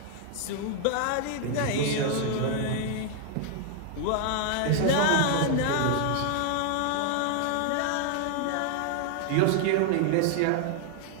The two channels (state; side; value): different; both; correlation 0.00